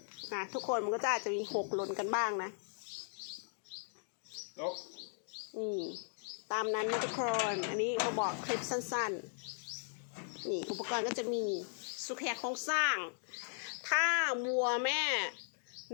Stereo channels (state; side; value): silent; right; digital silence